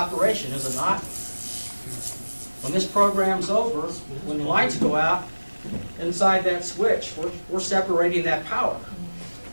is it not? When this program's over, when the lights go out, inside that switch, we're separating that power.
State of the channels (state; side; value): inverted; both; correlation -1.00